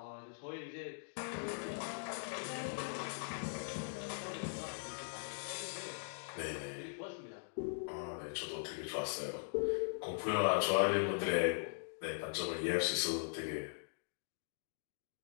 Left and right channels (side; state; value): right; silent; digital silence